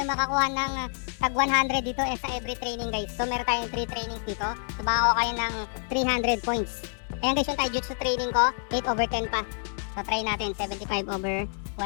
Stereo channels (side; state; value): right; silent; 57 dB below the other